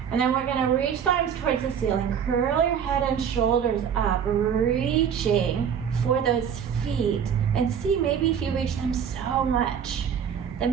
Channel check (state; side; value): quieter; left; 7.9 dB